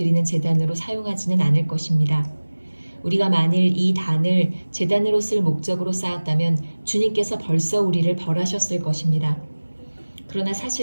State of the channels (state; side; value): inverted; both; correlation -1.00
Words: 제단으로 사용하지는 않을 것입니다. 우리가 만일 이 단을 제단으로 쓸 목적으로 쌓았다면 주님께서 벌써 우리를 벌하셨을 것입니다. 그러나